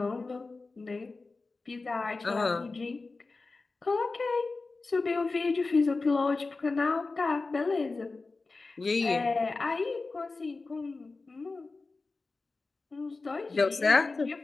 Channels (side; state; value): right; quieter; 3.7 dB